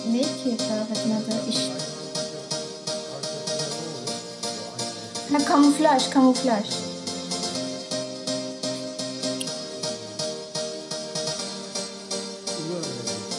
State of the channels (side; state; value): both; identical; correlation 1.00